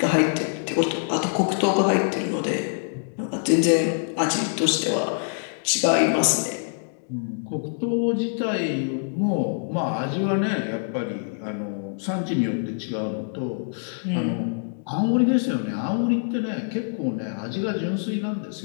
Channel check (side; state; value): right; silent; digital silence